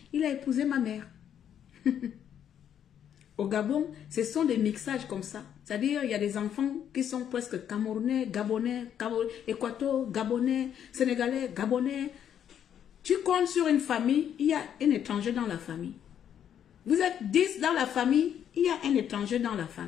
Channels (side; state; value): right; quieter; 9.3 dB